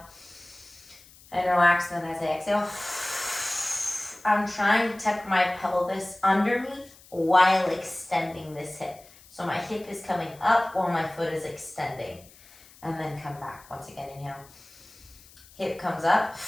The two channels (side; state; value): left; noise; hiss, 24 dB below the sound